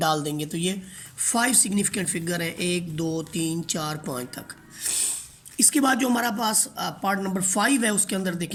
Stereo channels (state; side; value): identical; both; correlation 1.00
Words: देंगे। तो ये 5 सिग्निफिकेंट फिगर हैं, 1 2 3 4 5 तक। इसके बाद जो हमारा पास पार्ट नंबर 5 है उसके अंदर